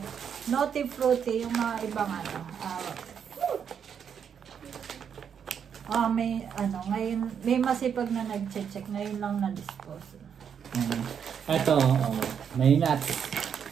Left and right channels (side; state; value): left; quieter; 7.7 dB